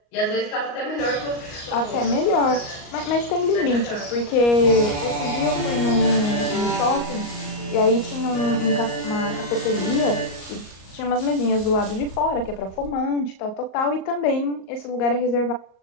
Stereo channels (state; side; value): late; right; 38 ms